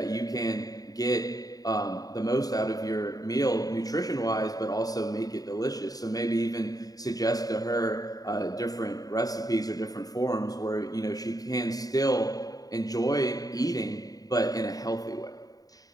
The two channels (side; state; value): right; late; 0.18 ms